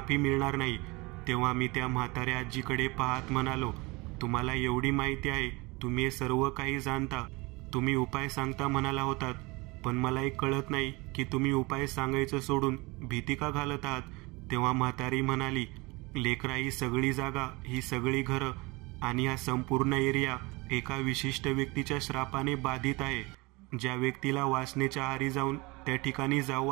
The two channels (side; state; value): left; quieter; 24.9 dB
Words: मिळणार नाही. तेव्हा मी त्या म्हाताऱ्या आजीकडे पाहत म्हणालो, तुम्हाला एवढी माहिती आहे, तुम्ही हे सर्व काही जाणता, तुम्ही उपाय सांगता म्हणाला होतात, पण मला एक कळत नाही की तुम्ही उपाय सांगायचं सोडून भीती का घालत आहात. तेव्हा म्हातारी म्हणाली, लेकरा, ही सगळी जागा, ही सगळी घरं आणि हा संपूर्ण एरिया एका विशिष्ट व्यक्तीच्या श्रापाने बाधित आहे. ज्या व्यक्तीला वासनेच्या आहारी जाऊन त्या ठिकाणी जाऊ